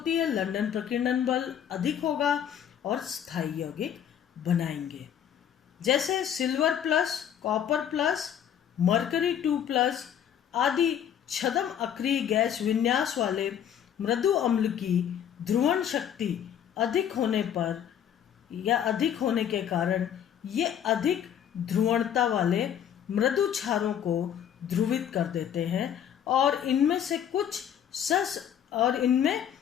है, लंदन प्रकीर्णन बल अधिक होगा और स्थायी यौगिक बनाएंगे। जैसे silver plus, copper plus, mercury 2+ आदि छद्म अक्रिय गैस विन्यास वाले मृदु अम्ल की ध्रुवण शक्ति अधिक होने पर या अधिक होने के कारण ये अधिक ध्रुवणता वाले मृदु क्षारों को ध्रुवित कर देते हैं और इनमें से कुछ और इनमें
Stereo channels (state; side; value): quieter; right; 9.3 dB